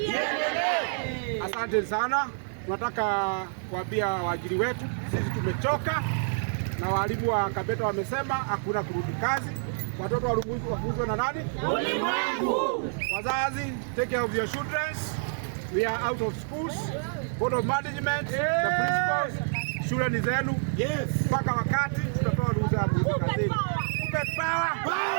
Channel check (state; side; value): silent; left; digital silence